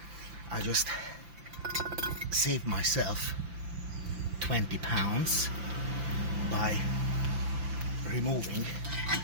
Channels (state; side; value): late; left; 5.9 ms